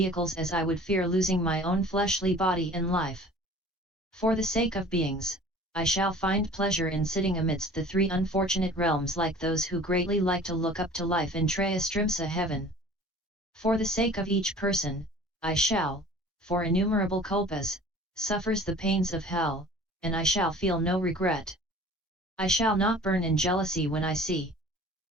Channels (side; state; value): both; normal; correlation 0.46